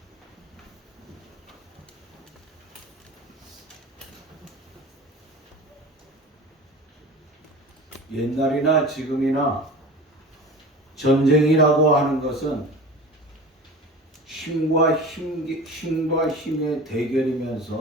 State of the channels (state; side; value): normal; both; correlation 0.36